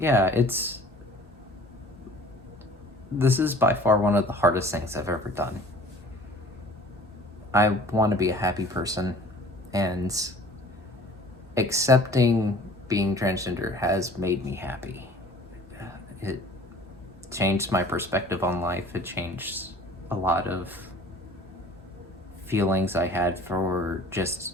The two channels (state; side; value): normal; both; correlation 0.49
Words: this is by far one of the hardest things I've ever done. I want to be a happy person, and accepting being transgender has made me happy. It changed my perspective on life. It changed a lot of feelings I had for